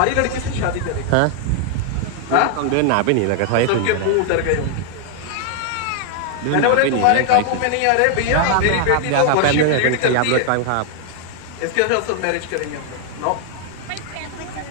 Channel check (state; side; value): different; both; correlation 0.00